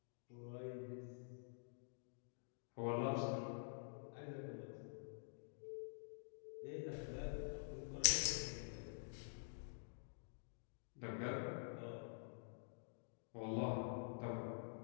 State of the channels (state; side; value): silent; right; digital silence